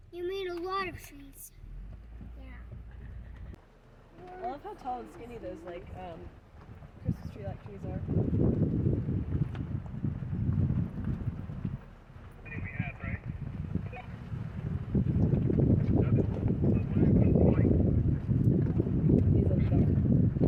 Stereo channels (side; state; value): both; identical; correlation 1.00